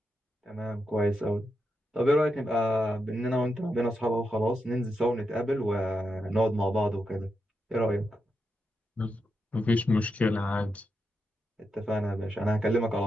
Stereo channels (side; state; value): both; normal; correlation 0.86